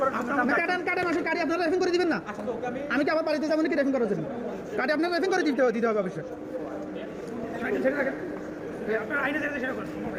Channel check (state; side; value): identical; both; correlation 1.00